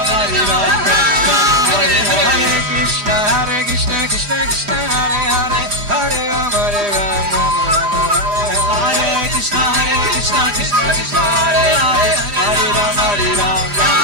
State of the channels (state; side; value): late; left; 4.9 ms